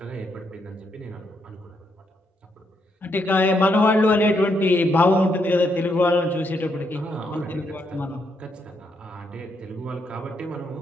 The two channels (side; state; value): both; normal; correlation 0.77